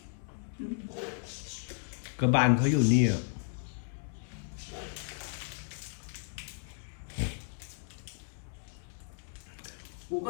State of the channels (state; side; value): silent; right; 55 dB below the other